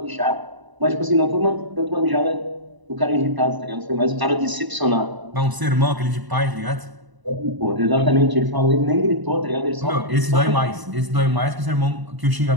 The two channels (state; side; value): late; left; 1.0 ms